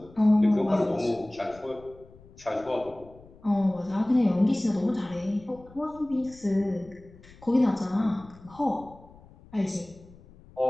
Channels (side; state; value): left; noise; rumble, 23 dB below the sound